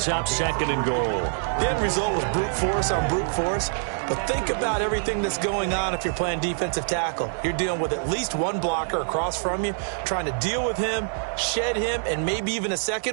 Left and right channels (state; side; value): silent; left; digital silence